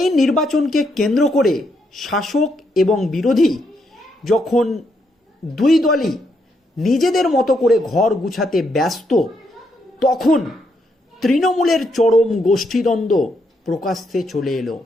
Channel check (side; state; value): both; normal; correlation 0.77